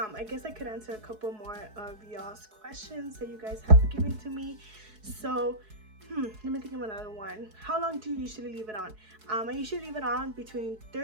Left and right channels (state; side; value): late; left; 4.7 ms